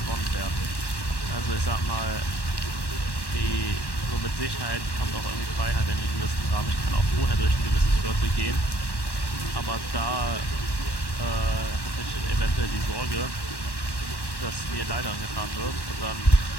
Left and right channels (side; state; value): right; late; 1.1 ms